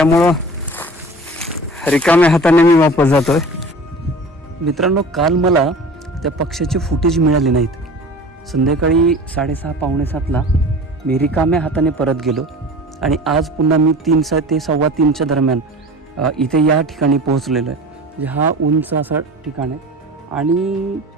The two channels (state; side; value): normal; both; correlation 0.39